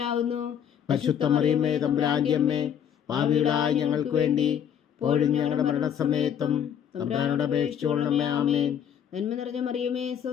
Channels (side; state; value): right; quieter; 8.8 dB